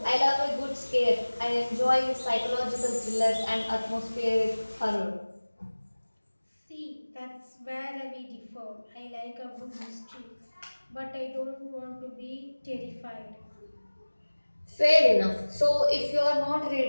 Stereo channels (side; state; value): both; inverted; correlation -1.00